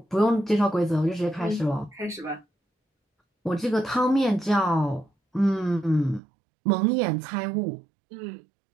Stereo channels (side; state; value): left; drops out; at 6.2 s